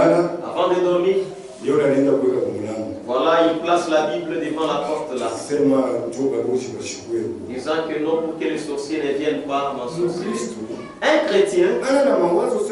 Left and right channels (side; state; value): both; identical; correlation 1.00